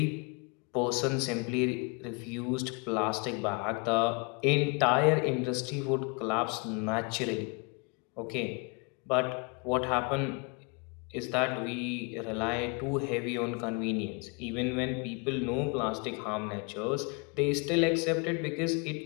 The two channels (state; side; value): quieter; right; 32.5 dB